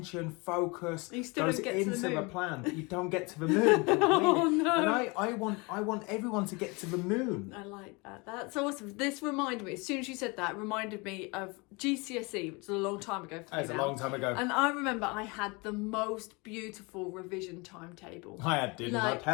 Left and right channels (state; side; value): quieter; right; 27.7 dB